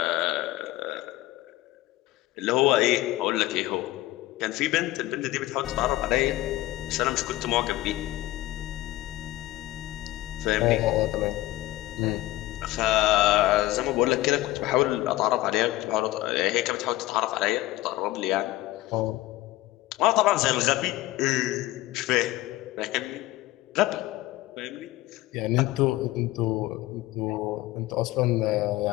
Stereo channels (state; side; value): quieter; right; 16.9 dB